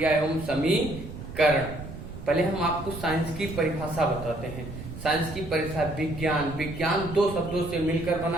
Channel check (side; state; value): right; noise; rumble, 11 dB below the sound